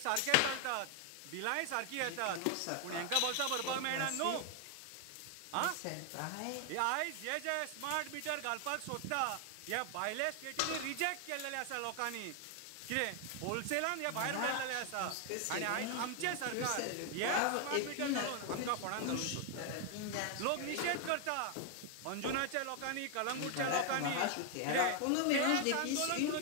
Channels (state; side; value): different; both; correlation 0.00